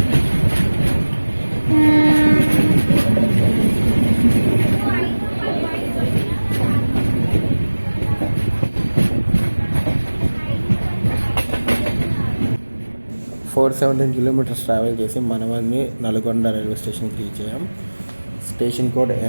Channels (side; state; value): both; inverted; correlation -1.00